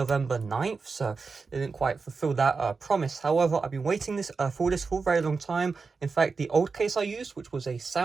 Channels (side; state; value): left; quieter; 4.6 dB